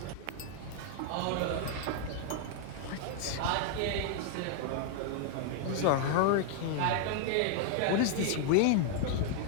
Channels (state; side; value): different; both; correlation 0.00